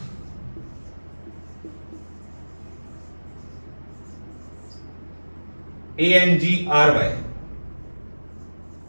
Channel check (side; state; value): both; inverted; correlation -1.00